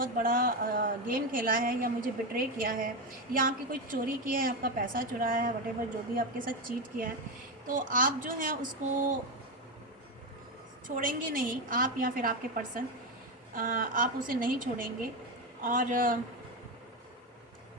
बड़ा गेम खेला है, या मुझे बिट्रे किया है, या आपकी कोई चोरी की है, आपका पैसा चुराया है, वटेवर जो भी आपके साथ चीट किया है, तो आप जो है उसको छोड़ेंगे नहीं, आप या फिर आपके पर्सन, आप उसे नहीं छोड़ेंगे, और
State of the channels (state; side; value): normal; both; correlation 0.12